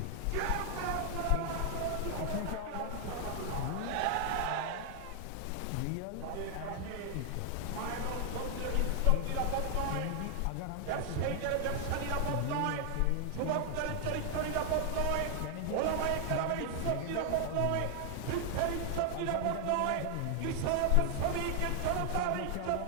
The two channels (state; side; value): different; both; correlation 0.00